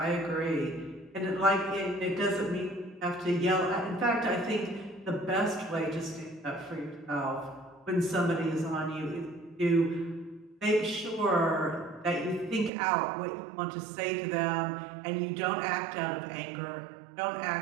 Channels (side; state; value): left; drops out; at 12.7 s